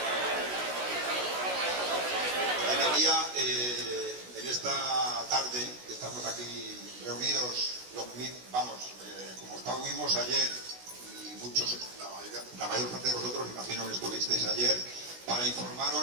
esta tarde que estamos aquí reunidos, como estuvimos ayer, y muchos, la mayor parte de vosotros, imagino que estuvisteis ayer, para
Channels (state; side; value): late; left; 16 ms